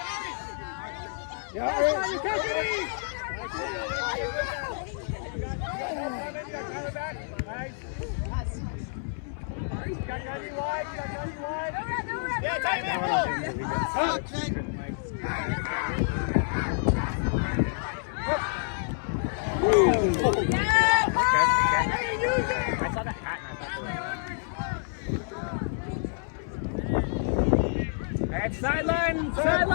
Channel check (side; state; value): right; silent; 59 dB below the other